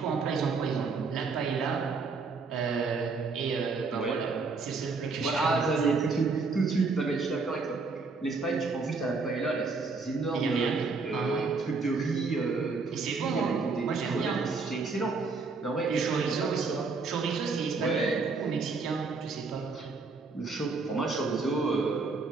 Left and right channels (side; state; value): left; quieter; 4.3 dB